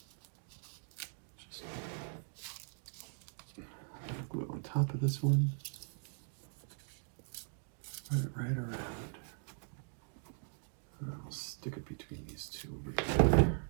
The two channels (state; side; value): silent; left; digital silence